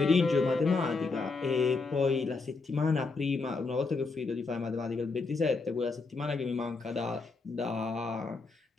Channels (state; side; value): quieter; right; 4.0 dB